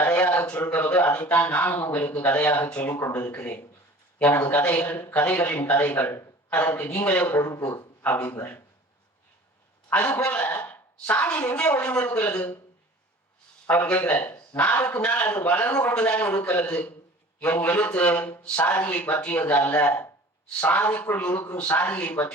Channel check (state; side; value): normal; both; correlation 0.45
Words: சொல்கிறதோ அதைத்தான் நானும் உங்களுக்கு கதையாக சொல்லிக் கொண்டிருக்கிறேன். எனது கதைகளின் கதைகள், அதற்கு நீங்களே பொறுப்பு அப்படிங்கிறார். அது போல சாதி எங்கே ஒளிந்திருக்கிறது அவர் கேட்கிறார். நாளுக்கு நாள் அது வளர்ந்து கொண்டுதான் இருக்கிறது. என் எழுத்து சாதியை பற்றியது அல்ல, சாதிக்குள் இருக்கும் சாதியை